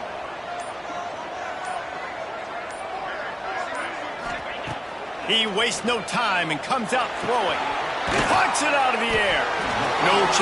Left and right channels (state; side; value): identical; both; correlation 1.00